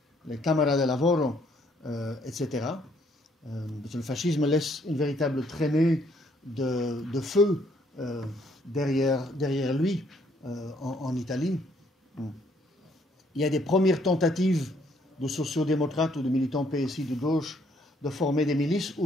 Cámaras de Lavoro, etc. Parce que le fascisme laisse une véritable traînée de feu derrière lui en Italie. Il y a des premières tentatives de sociodémocrates ou de militants PSI de gauche de former des milices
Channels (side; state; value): both; normal; correlation 0.67